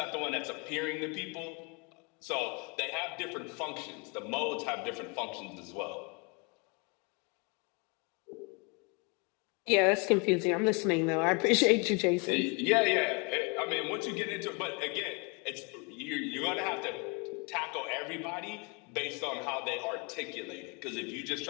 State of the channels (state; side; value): quieter; right; 32.1 dB